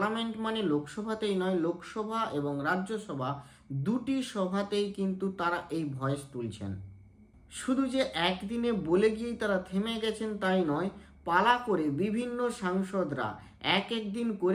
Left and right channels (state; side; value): identical; both; correlation 1.00